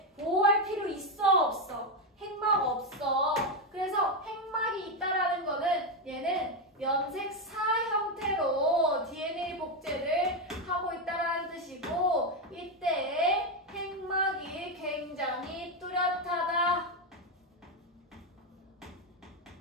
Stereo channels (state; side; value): normal; both; correlation 0.07